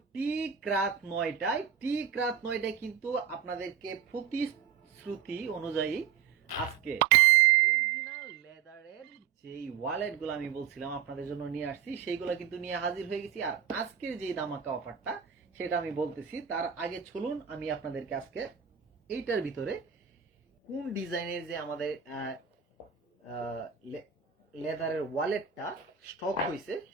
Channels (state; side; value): quieter; left; 7.9 dB